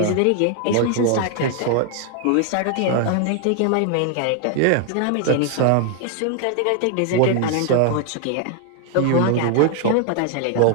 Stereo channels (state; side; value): different; both; correlation 0.00